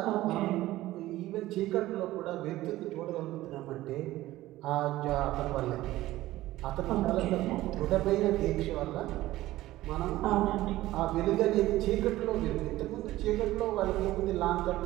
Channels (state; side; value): quieter; left; 16.2 dB